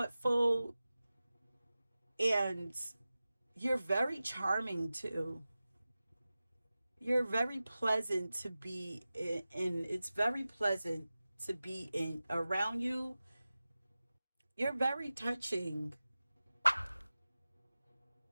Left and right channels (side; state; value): both; inverted; correlation -0.96